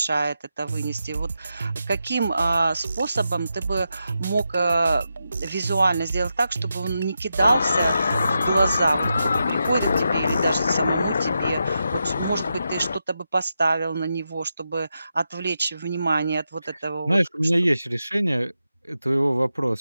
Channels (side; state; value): both; inverted; correlation -0.87